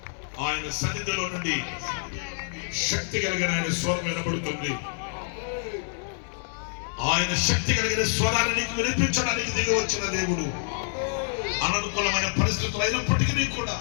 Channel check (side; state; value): right; silent; digital silence